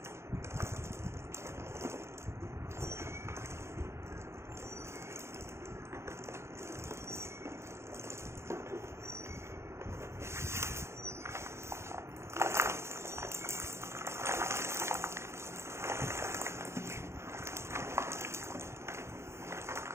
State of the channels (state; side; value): late; left; 0.13 ms